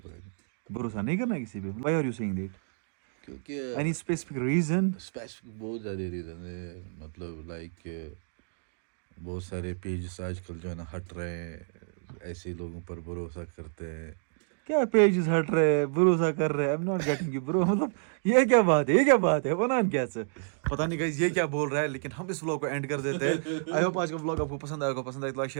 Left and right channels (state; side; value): silent; left; digital silence